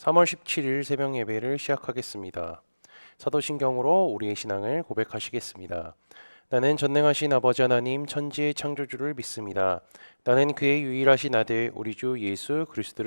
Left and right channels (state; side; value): inverted; both; correlation -1.00